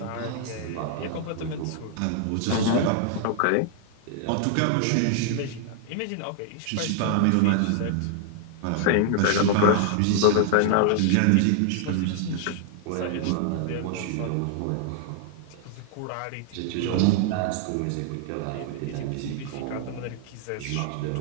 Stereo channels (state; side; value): different; both; correlation 0.00